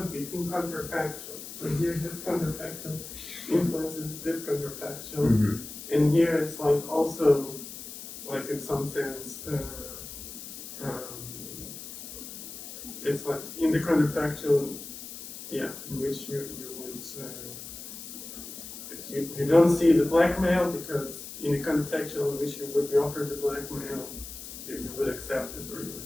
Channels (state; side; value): noise; left; hiss, 11 dB below the sound